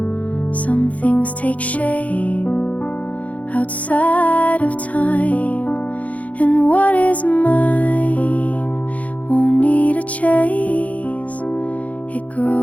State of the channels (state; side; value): late; right; 0.069 ms